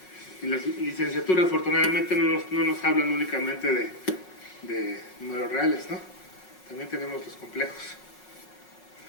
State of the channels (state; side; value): late; right; 5.4 ms